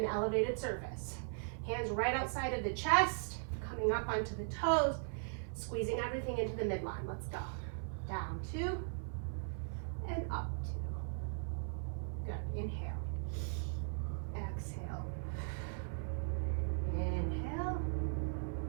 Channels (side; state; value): left; silent; 52 dB below the other